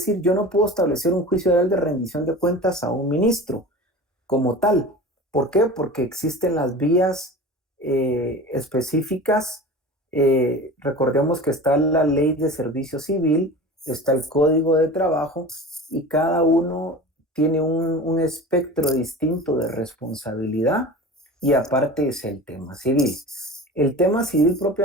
yo no puedo establecer un juicio oral de rendición de cuentas a un ministro como tal. ¿Por qué? Porque existen las vías específicas. Recordemos que está la ley de servicio civil, está el código de trabajo y cada uno tiene un espectro distinto de responsabilidad y aparte es el tema civil. El tema civil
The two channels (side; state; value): both; normal; correlation 0.35